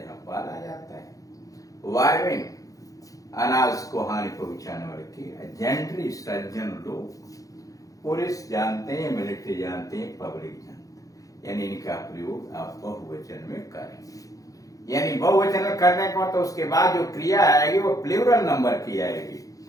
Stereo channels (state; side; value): late; right; 0.17 ms